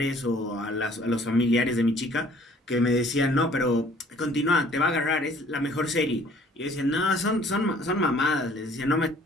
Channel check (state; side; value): normal; both; correlation 0.56